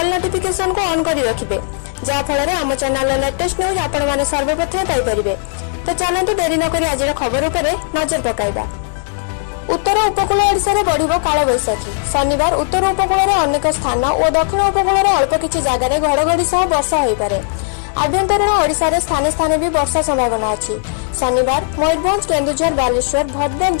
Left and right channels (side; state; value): right; silent; digital silence